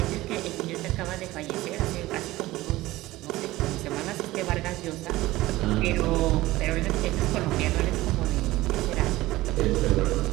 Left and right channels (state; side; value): quieter; left; 17.8 dB